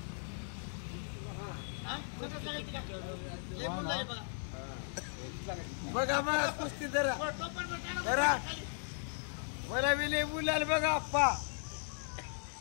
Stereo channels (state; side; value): silent; right; digital silence